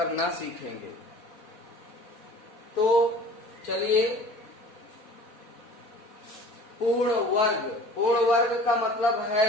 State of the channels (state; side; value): late; right; 4.1 ms